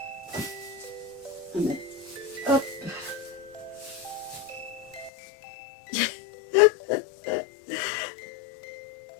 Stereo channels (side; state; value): right; drops out; at 5.1 s